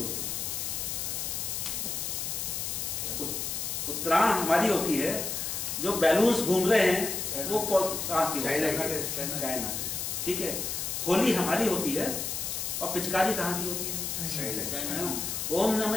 है? उत्तरायण हमारी होती है, जो बैलून्स घूम रहे हैं वो कहाँ की? चाइना। ठीक है, होली हमारी होती है और पिचकारी कहाँ की होती है? ओम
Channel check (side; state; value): left; noise; hiss, 3 dB below the sound